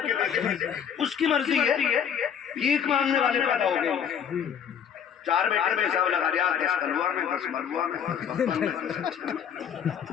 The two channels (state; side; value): quieter; right; 8.2 dB